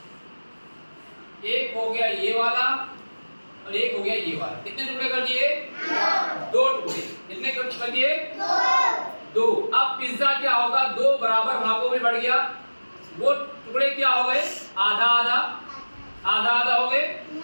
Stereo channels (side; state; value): both; inverted; correlation -1.00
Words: गया ये वाला और एक हो गया ये वाला। कितने टुकड़े कर दिए? दो टुकड़े। कितने कर दिए? दो। अब पिज्जा क्या होगा, दो बराबर भागों में बढ़ गया। वो टुकड़े क्या हो गए? आधा आधा, आधा आधा हो गए।